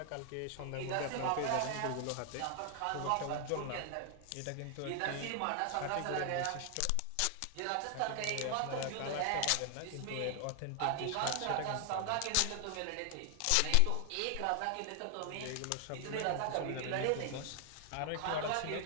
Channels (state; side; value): different; both; correlation 0.00